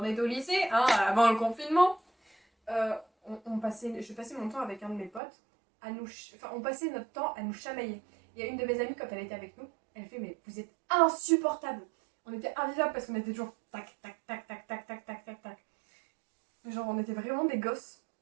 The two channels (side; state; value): left; drops out; at 5.2 s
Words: était au lycée, hein, avant le confinement, je passais mon temps avec un de mes potes on passait notre temps à nous chamailler. Il y a une de mes amies, quand elle était avec nous, elle fait mais vous êtes insupportables. On était invivables parce qu'on était toujours tac tac tac tac tac tac tac tac tac. Genre on était vraiment des gosses.